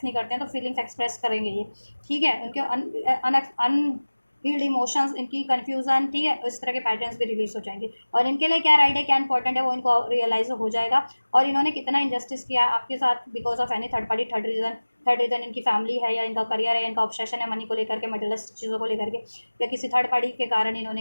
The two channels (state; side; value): inverted; both; correlation -1.00